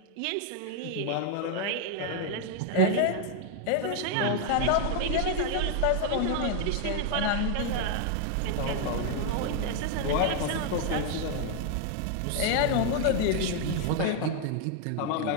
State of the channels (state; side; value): different; both; correlation 0.00